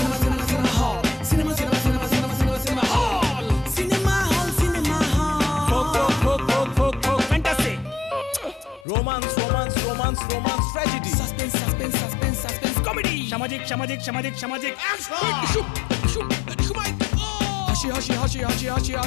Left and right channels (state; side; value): drops out; right; at 8.8 s